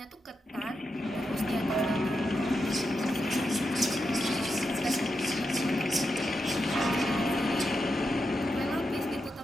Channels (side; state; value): both; normal; correlation 0.87